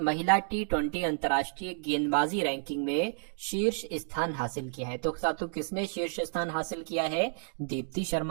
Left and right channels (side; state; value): left; silent; digital silence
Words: T20 अंतर्राष्ट्रीय गेंदबाजी रैंकिंग में शीर्ष स्थान हासिल किया है? तो साथियों किसने शीर्ष स्थान हासिल किया है? दीप्ति